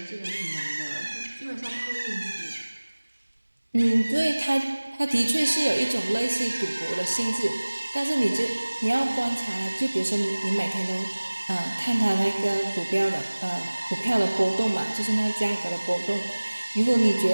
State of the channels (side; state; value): both; inverted; correlation -1.00